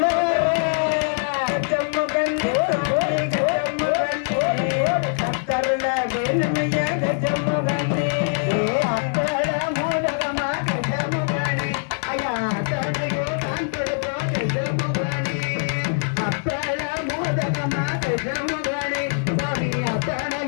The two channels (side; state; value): right; silent; digital silence